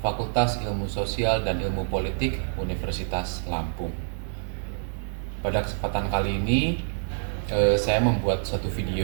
Fakultas Ilmu Sosial dan Ilmu Politik Universitas Lampung. Pada kesempatan kali ini, saya membuat satu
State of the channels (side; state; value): left; silent; digital silence